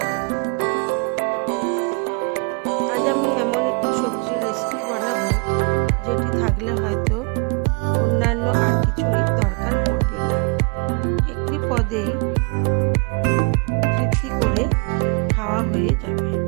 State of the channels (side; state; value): left; quieter; 36.3 dB